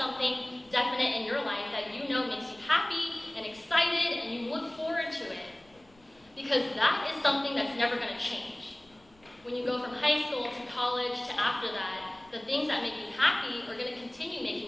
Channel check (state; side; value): noise; left; rumble, 30 dB below the sound